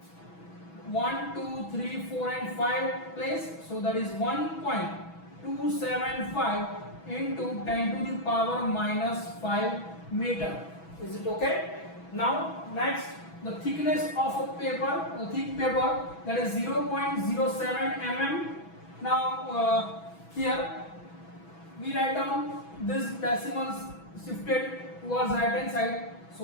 1, 2, 3, 4 and 5 place. So that is 1.275 into 10 to the power minus 5 meter. Is it okay? Now next, the thickness of a paper, a thick paper, that is 0.07 mm. Now here we write down this decimals shifted towards right hand side.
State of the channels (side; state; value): right; late; 6.1 ms